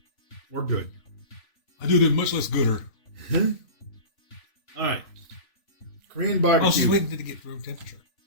We're good. I do them much less gooder. All right. Korean Oh, she's barbecue. waiting to get room temperature.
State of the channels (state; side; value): late; right; 3.5 ms